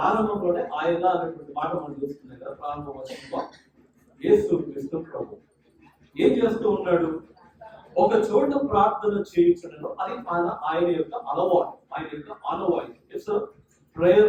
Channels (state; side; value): identical; both; correlation 1.00